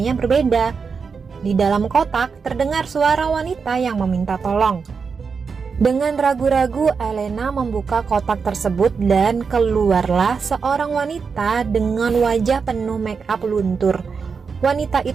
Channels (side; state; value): left; quieter; 5.5 dB